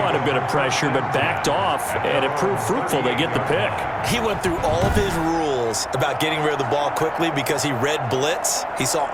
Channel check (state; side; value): identical; both; correlation 1.00